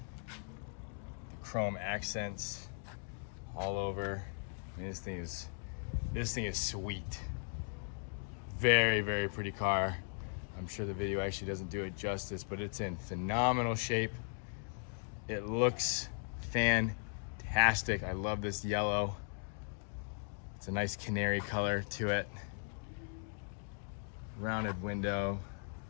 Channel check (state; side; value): silent; right; 52 dB below the other